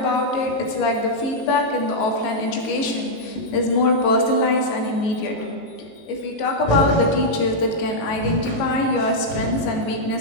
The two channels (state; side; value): late; right; 18 ms